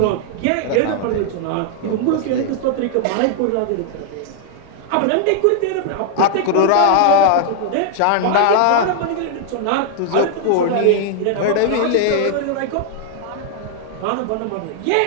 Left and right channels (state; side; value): different; both; correlation 0.00